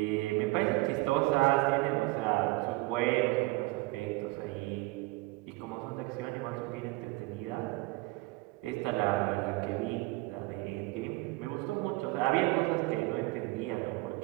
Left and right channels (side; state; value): left; quieter; 22.9 dB